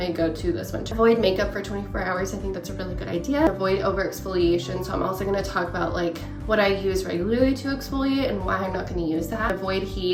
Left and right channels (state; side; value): identical; both; correlation 1.00